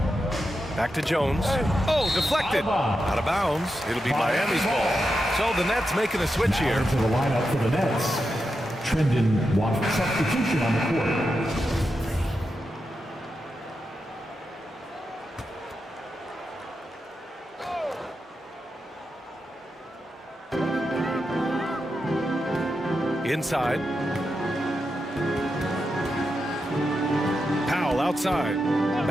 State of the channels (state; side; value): normal; both; correlation 0.88